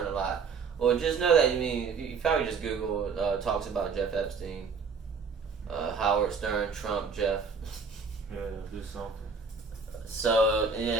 a lot. Well, just know that, you probably just Google talks about Jeff Epstein, Howard Stern, Trump, Jeff. Yeah, do something. So,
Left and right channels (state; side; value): quieter; left; 5.2 dB